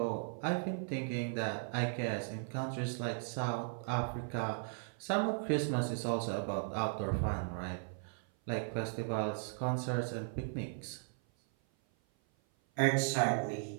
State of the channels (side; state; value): left; silent; 53 dB below the other